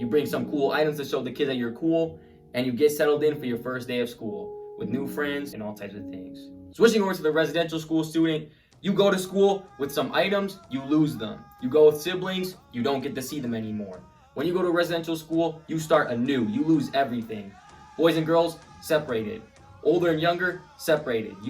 bring some cool items to show the kids that you're cool, and you get settled in for your first day of school with new friends and all types of things. Switching over to the residential school student, you go to school with some items, you lose them. You go with siblings, you don't get to see them anymore. When you go to residential school, you start anew. You lose everything. Boys and girls, separated. Older and younger, separated.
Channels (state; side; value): identical; both; correlation 1.00